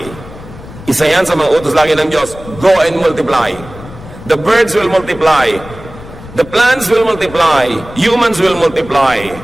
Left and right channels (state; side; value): noise; left; rumble, 16 dB below the sound